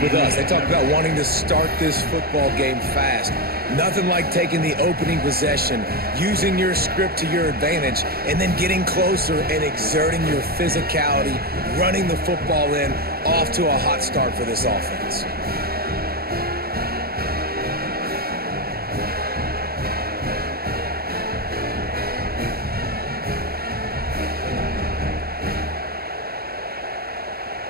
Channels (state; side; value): late; left; 0.45 ms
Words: with us. They talked about wanting to start this football game fast. Nothing like taking the opening possession, using your script to your advantage, and then getting closer and exerting your physicality, running the football in, off to a hot start for this offense.